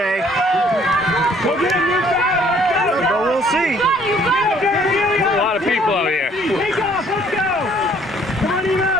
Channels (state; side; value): normal; both; correlation 0.61